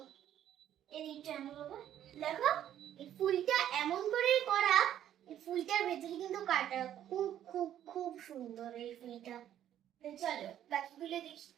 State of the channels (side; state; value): left; quieter; 11.1 dB